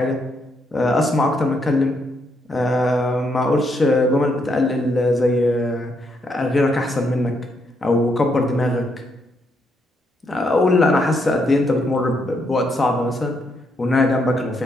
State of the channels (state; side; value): normal; both; correlation 0.76